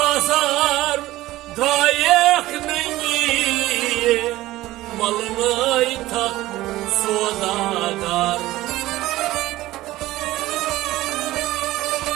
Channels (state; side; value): quieter; left; 16.7 dB